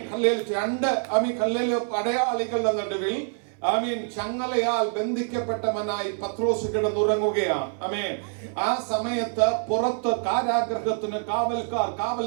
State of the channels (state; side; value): silent; left; 61 dB below the other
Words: 2 പടയാളികളുടെ നടുവിൽ ചങ്ങലയാൽ ബന്ധിക്കപ്പെട്ടവനായി പത്രോസ് കിടന്നുറങ്ങുകയാണ്. ആ സമയത്ത് പുറത്ത് കാരാഗ്രഹത്തിന് കാവൽക്കാർ കാവൽ